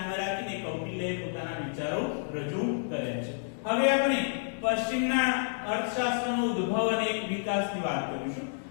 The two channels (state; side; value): silent; right; digital silence